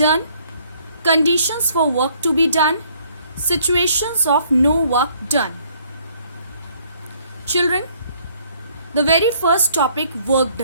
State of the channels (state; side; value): inverted; both; correlation -0.63